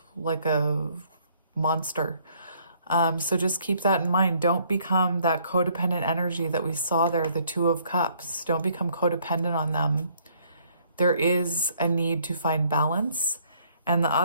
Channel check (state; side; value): inverted; both; correlation -0.64